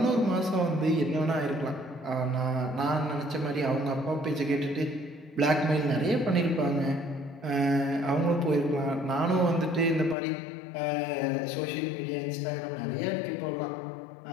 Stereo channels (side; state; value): right; drops out; at 10.2 s